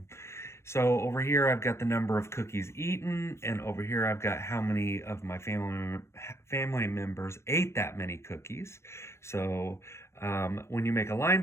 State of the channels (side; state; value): right; late; 0.13 ms